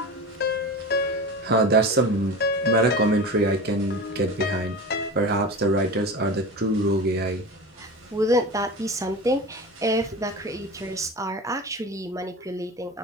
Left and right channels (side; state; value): both; normal; correlation 0.30